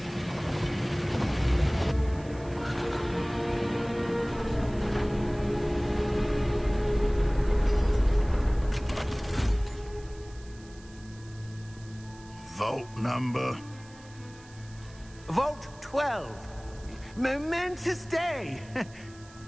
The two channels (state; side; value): noise; right; hiss, 23 dB below the sound